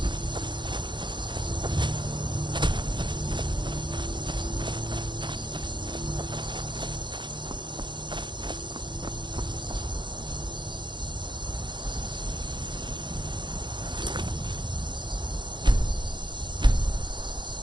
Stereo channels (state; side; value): late; left; 0.23 ms